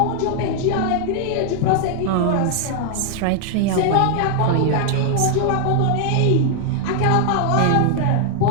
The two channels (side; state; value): both; different; correlation 0.00